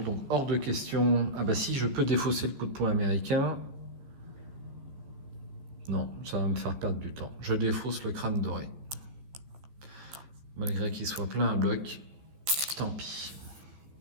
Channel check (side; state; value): left; late; 14 ms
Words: donc hors de question. Ah bah si, je peux défausser le coup de poing américain. Non, ça va me faire perdre du temps. Je défausse le crâne doré. Malgré qu'il soit plein à bloc, tant pis.